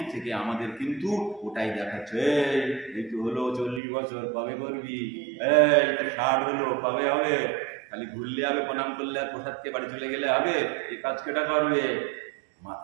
থেকে আমাদের কিন্তু ওটাই দেখাচ্ছে। এই তো হলো 40 বছর, কবে করবি? এই তো 60 হলো, কবে হবে? খালি ঘুরলে হবে, প্রণাম করলে আর প্রসাদকে বাড়ি চলে গেলে হবে? এই কাজ কেটা করবে?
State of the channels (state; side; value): drops out; left; at 3.8 s